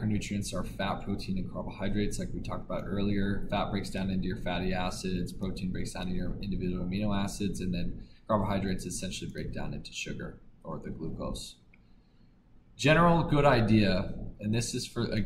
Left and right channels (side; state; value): both; identical; correlation 1.00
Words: are fat, protein, and carbohydrates, like we talked about earlier. Fat breaks down into your fatty acids, protein breaks down into your individual amino acids, and then carbohydrates essentially break down into sugar or the glucose. General good idea, and this is for,